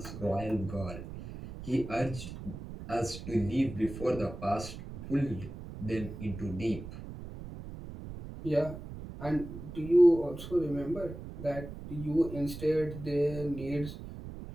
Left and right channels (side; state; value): right; noise; rumble, 11 dB below the sound